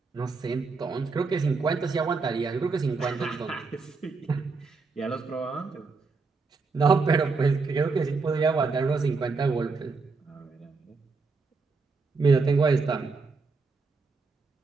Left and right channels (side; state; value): left; quieter; 4.3 dB